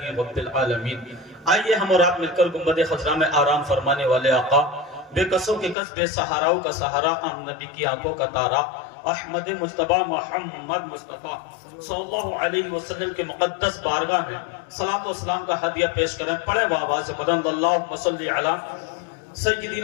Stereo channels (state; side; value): drops out; right; at 5.8 s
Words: رب العالمین۔ آئیے ہم اور آپ مل کر گنبد خضرا میں آرام فرمانے والے آقا، بے قصوں کے قص بے سہاراؤں کا سہارا، عام نبی کی آنکھوں کا تارا، احمد مجتبی محمد مصطفیٰ صلی اللہ علیہ وسلم کے مقدس بارگاہ میں صلاۃ و سلام کا ہدیہ پیش کریں۔ پڑھیں بآواز بلند اللہم صلی علی